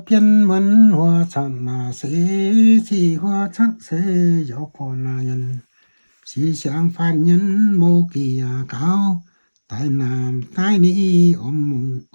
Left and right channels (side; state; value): both; inverted; correlation -1.00